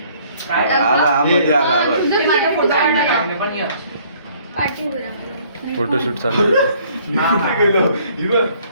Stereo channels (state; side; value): inverted; both; correlation -0.60